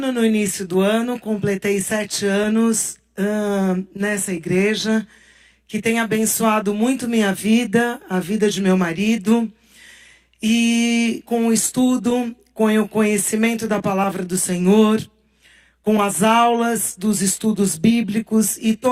no início do ano, completei 7 anos nessa igreja, que tem abençoado muito minha vida, a vida de meu marido, e com o estudo, com o conhecimento da palavra do Senhor, com as aulas dos estudos bíblicos e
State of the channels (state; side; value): identical; both; correlation 1.00